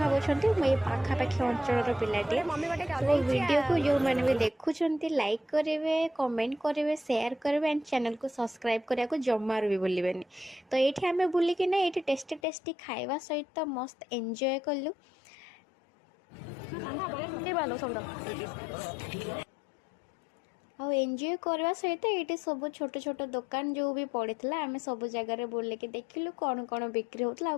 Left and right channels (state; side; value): drops out; right; at 12.4 s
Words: मुझे पाखापाखि अंचल पिलाटे तो वीडियो को जो मैंने भी देखुंट लाइक करेंगे कमेंट करेंगे शेयर करेंगे एंड चैनल को सब्सक्राइब करने को जमार भी भूलिबेनि। तो ये आम बुलिकिना ये टेस्टी टेस्टी खाଇବା सहित मस्त एंजॉय कलु एंजॉय करवा सहित ये सब छोट छोट दुकान जो भी पड़ता आम सब जगह बुलिक देखिलु कौन कौन बिक्री होता